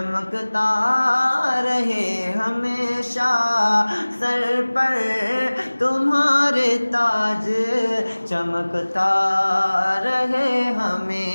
रहे हमेशा, सर पर तुम्हारे ताज चमकता रहे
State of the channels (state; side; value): inverted; both; correlation -1.00